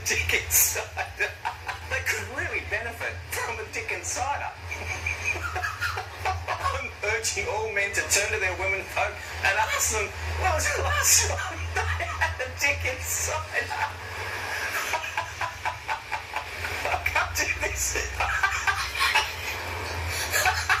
Dickens cider. They could really benefit from a Dickens cider. I'm urging all men to turn to their women folk and ask them, when was the last time they had a Dickens cider? I can't do this.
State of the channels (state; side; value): identical; both; correlation 1.00